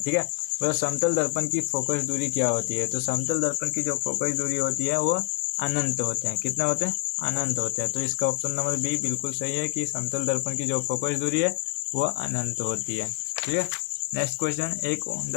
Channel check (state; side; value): quieter; right; 28.9 dB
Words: है। वह समतल दर्पण की फोकस दूरी क्या होती है। तो समतल दर्पण की जो फोकस दूरी होती है वो अनंत होते हैं। कितने होते हैं, अनंत होते हैं। तो इसका ऑप्शन नंबर बी बिल्कुल सही है कि समतल दर्पण की जो फोकस दूरी है वो अनंत होती है, ठीक है। नेक्स्ट क्वेश्चन, एक